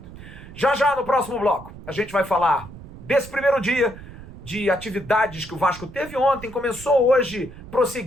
Já já no próximo bloco, a gente vai falar desse primeiro dia de atividades que o Vasco teve ontem, começou hoje,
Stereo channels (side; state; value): right; noise; rumble, 16 dB below the sound